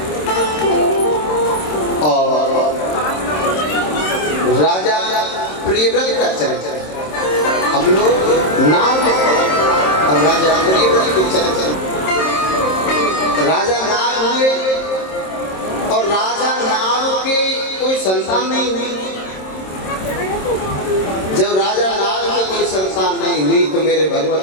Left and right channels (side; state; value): right; late; 27 ms